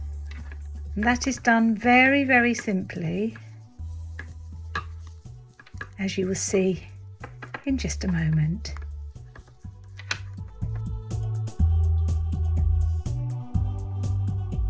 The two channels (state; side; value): identical; both; correlation 1.00